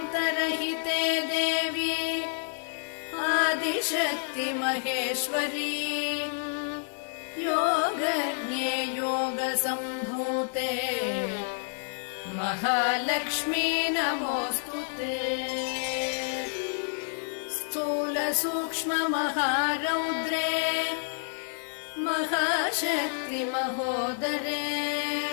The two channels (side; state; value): right; silent; digital silence